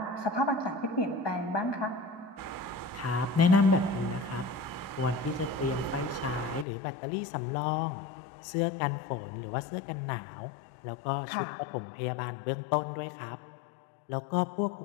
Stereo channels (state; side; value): drops out; right; at 6.7 s